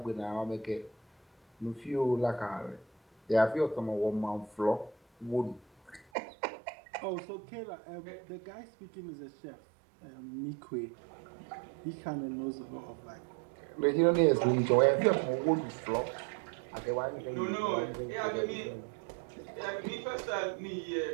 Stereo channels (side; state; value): left; drops out; at 6.1 s